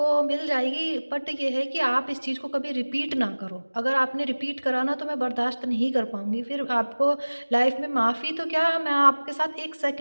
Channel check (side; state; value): both; inverted; correlation -1.00